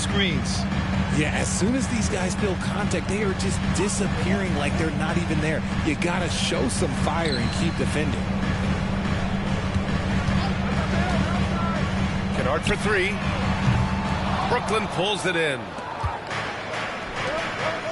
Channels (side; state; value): both; identical; correlation 1.00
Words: Yeah, as soon as these guys feel contact, they are just disappearing like they're not even there. You gotta show some fire and keep defending. Kennard for 3. Brooklyn pulls it in.